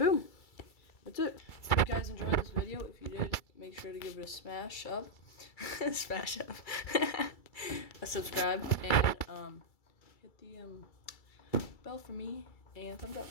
That's it. If you guys enjoyed this video, if you did, make sure to give it a smash up. Smash up. A subscribe, and hit the bell for me, and thumbs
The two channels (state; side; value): late; right; 2.3 ms